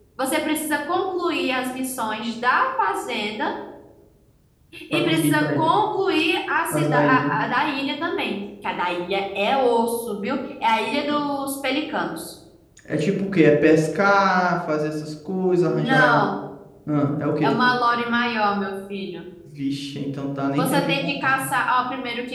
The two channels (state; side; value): identical; both; correlation 1.00